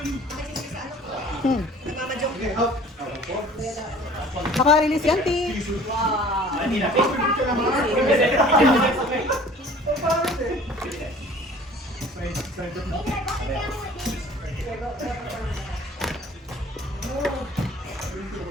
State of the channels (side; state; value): both; normal; correlation 0.49